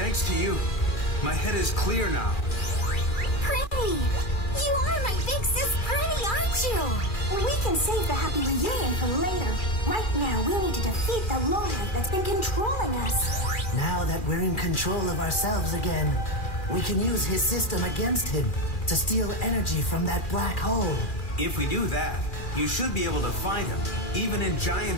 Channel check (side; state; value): right; late; 2.4 ms